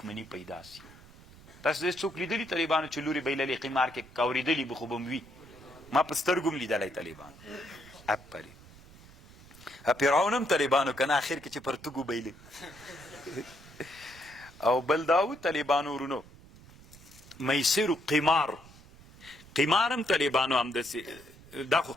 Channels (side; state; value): right; noise; rumble, 22 dB below the sound